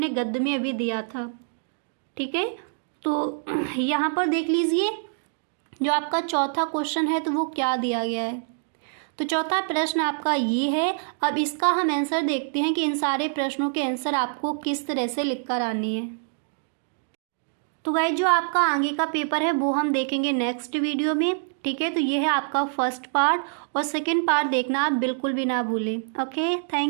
गद्य में अभी दिया था। ठीक है, तो यहाँ पर देख लीजिए जो आपका चौथा क्वेश्चन है तो वो क्या दिया गया है। तो चौथा प्रश्न आपका ये है। अब इसका हम आंसर देखते हैं कि इन सारे प्रश्नों के आंसर आपको किस तरह से लिख कर आने हैं। तो गाइस जो आपका आगे का पेपर है वो हम देखेंगे नेक्स्ट वीडियो में। ठीक है, तो ये है आपका फर्स्ट पार्ट और सेकंड पार्ट देखना आप बिल्कुल भी ना भूलें। Okay,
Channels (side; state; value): left; silent; digital silence